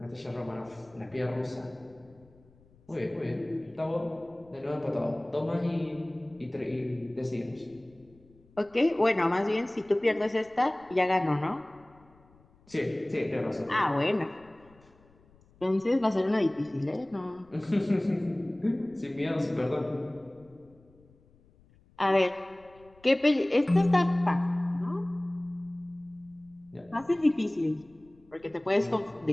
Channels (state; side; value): noise; left; rumble, 29 dB below the sound